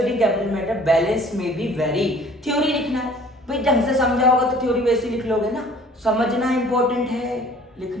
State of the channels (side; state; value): both; normal; correlation 0.52